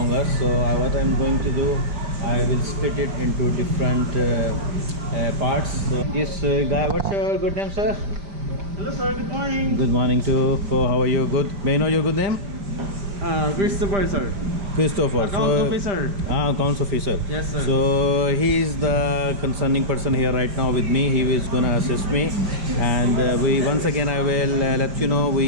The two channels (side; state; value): left; late; 5.0 ms